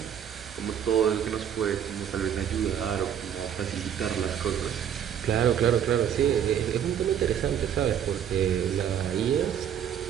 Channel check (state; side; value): quieter; left; 9.2 dB